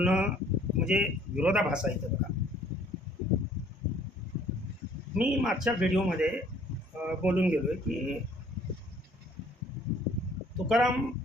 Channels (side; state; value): both; normal; correlation 0.58